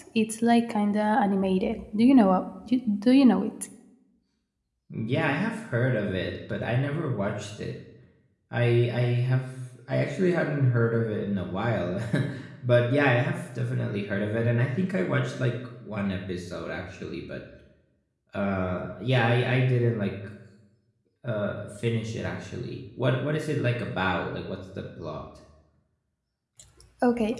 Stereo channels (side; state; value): both; identical; correlation 1.00